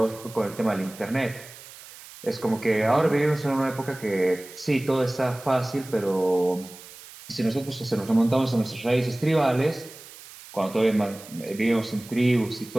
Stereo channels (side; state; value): right; noise; hiss, 18 dB below the sound